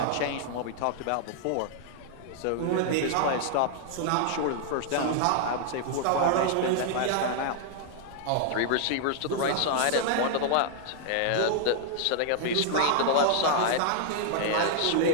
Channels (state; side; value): different; both; correlation -0.01